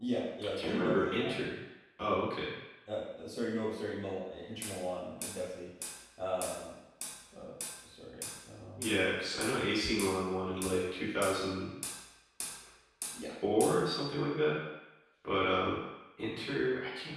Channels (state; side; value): identical; both; correlation 1.00